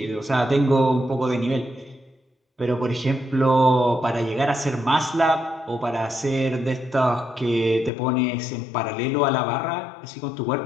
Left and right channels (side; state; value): right; drops out; at 7.9 s